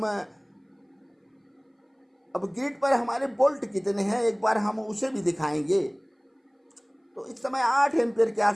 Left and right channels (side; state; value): both; identical; correlation 1.00